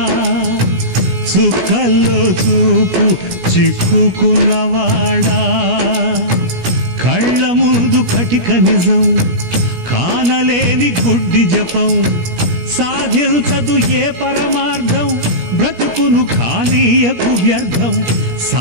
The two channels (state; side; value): late; left; 17 ms